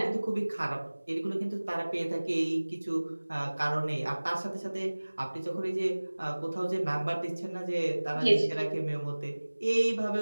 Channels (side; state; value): both; inverted; correlation -1.00